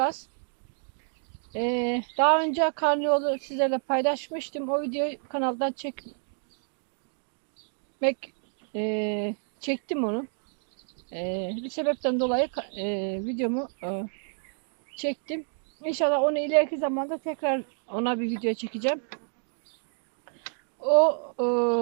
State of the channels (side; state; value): left; silent; 59 dB below the other